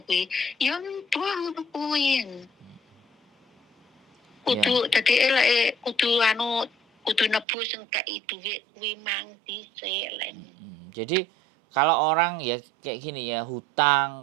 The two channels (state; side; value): drops out; left; at 7.5 s